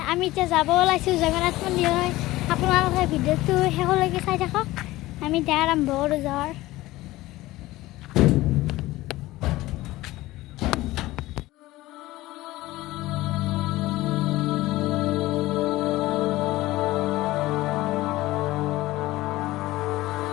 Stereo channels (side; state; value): right; quieter; 17.8 dB